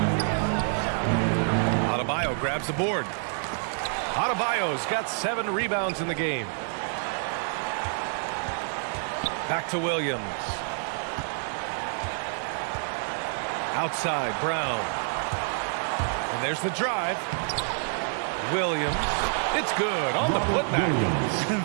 Adebayo grabs the board. Adebayo's got 7 rebounds in the game. Back to Williams. Outside, Brown. And there's the drive. Williams. It's good on the putback. And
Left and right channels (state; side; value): silent; left; 60 dB below the other